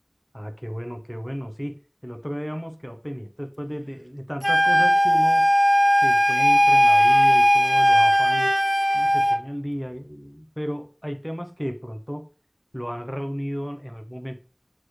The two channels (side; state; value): both; identical; correlation 1.00